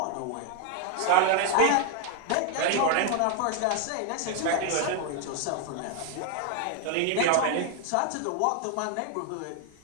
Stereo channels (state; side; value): different; both; correlation 0.01